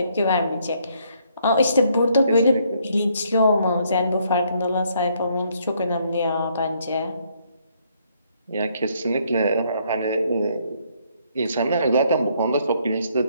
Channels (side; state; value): both; inverted; correlation -0.69